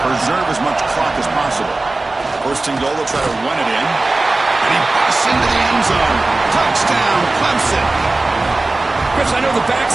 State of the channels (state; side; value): quieter; left; 3.1 dB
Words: preserve as much clock as possible. 1st and goal, they'll try to run it in. And he busts into the end zone. Touchdown, Clemson. Chris, I know the